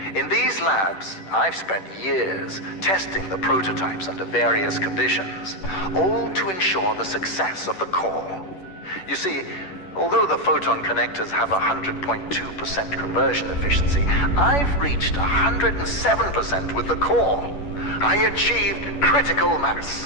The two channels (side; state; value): right; late; 10 ms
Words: In these labs, I've spent years testing the prototypes under various conditions, all to ensure the success of the core. You see, although the photon connectors have 100.2% conversion efficiency, I've reached 107% with the core. I achieved critical